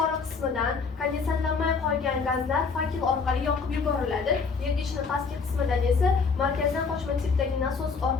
qismidan kondensatlanmay qolgan gazlar fakel orqali yoqib yuboriladi. Yergichning pastki qismidan esa markazdan qochma tipdagi nasos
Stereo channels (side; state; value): right; quieter; 5.0 dB